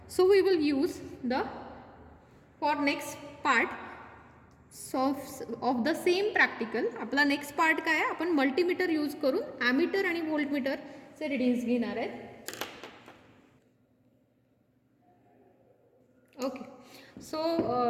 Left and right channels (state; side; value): identical; both; correlation 1.00